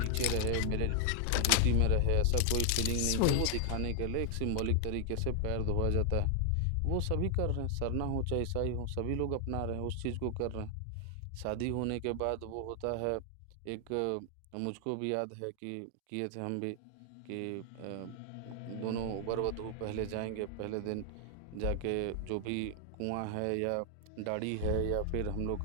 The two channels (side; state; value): both; different; correlation 0.00